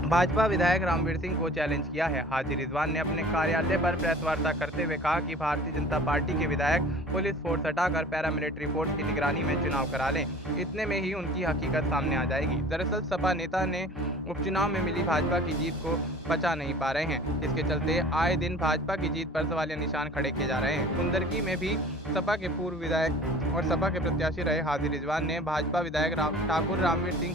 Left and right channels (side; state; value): both; normal; correlation 0.45